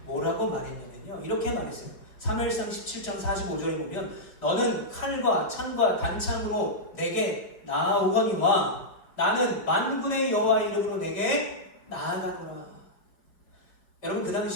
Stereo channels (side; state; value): right; late; 4.9 ms